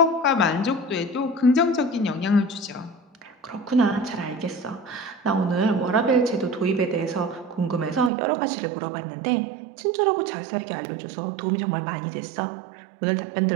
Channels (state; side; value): drops out; left; at 8.1 s